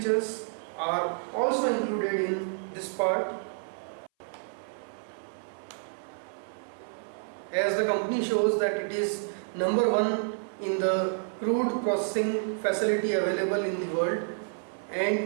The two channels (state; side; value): silent; left; 58 dB below the other